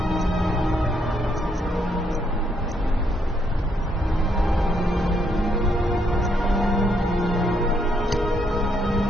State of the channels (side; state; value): both; normal; correlation 0.74